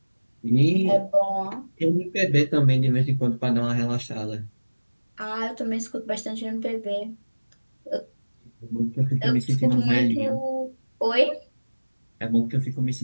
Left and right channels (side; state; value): both; inverted; correlation -1.00